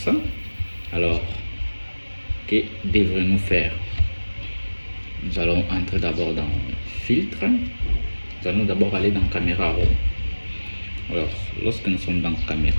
Alors, que devrions-nous faire? Nous allons entrer d'abord dans filtre. Nous allons d'abord aller dans caméra raw. Alors, lorsque nous sommes dans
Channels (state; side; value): inverted; both; correlation -1.00